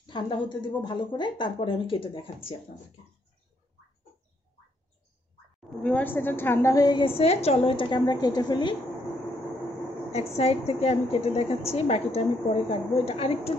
ঠান্ডা হতে দিব ভালো করে, তারপরে আমি কেটে দেখাচ্ছি আপনাদেরকে। ভিউয়ার্স, এটা ঠান্ডা হয়ে গেছে, চলো এটাকে আমরা কেটে ফেলি। এক সাইড থেকে আমি কেটে দেখাচ্ছি, বাকিটা আমি পরে কাটবো। এটা আরেকটু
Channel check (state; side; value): normal; both; correlation 0.73